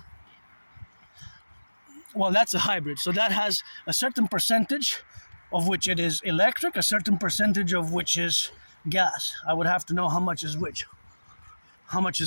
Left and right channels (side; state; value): both; inverted; correlation -1.00